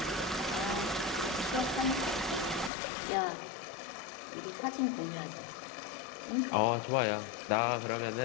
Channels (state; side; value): drops out; right; at 2.7 s